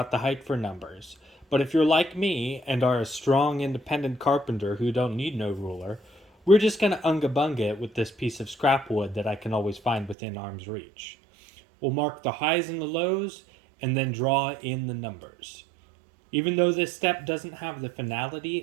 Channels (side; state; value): left; drops out; at 10.2 s